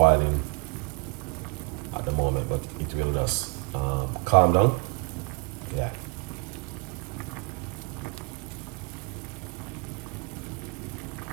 at the moment, but it will just calm down. Yeah.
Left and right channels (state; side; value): quieter; left; 30.2 dB